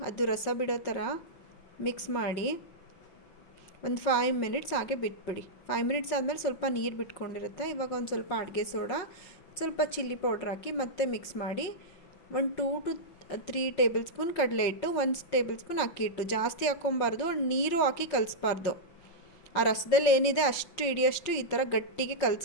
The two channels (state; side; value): late; right; 5.5 ms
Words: ಅದು ರಸ ಬಿಡೋ ಥರ ಮಿಕ್ಸ್ ಮಾಡಿ ಒಂದು 5 ಮಿನಿಟ್ಸ್ ಹಾಗೆ ಬಿಟ್ಬಿಡಿ. 5 ಮಿನಿಟ್ಸ್ ಆದಮೇಲೆ ಸ್ವಲ್ಪ ನೀರು ಬಿಟ್ಕೊಂಡಿರುತ್ತೆ. ಇವಾಗ ಒಂದು ಸ್ವಲ್ಪ ಅಡುಗೆ ಸೋಡಾ, ಸ್ವಲ್ಪ ಚಿಲ್ಲಿ ಪೌಡ್ರ್ ಹಾಕಿ ಮತ್ತೆ ಮಿಕ್ಸ್ ಮಾಡಿ ಒಂದು 2 to 3 ಟೇಬಲ್ ಸ್ಪೂನ್ ಕಡಲೆ ಹಿಟ್ಟು, 1 ಟೇಬಲ್ ಸ್ಪೂನ್ ಅಕ್ಕಿ ಹಿಟ್ಟು. ಜಾಸ್ತಿ ಹಾಕ್ಕೊಬಾರ್ದು, ನೀರು ಹಾಕಿ ಕಲಿಸ್ಬಾರ್ದು. ಆ ರಸದಲ್ಲಿ ಏನಿದೆ ಅಷ್ಟು ಹಿಡಿಯಷ್ಟು ಈ ಥರ ಗಟ್ಟಿಗೆ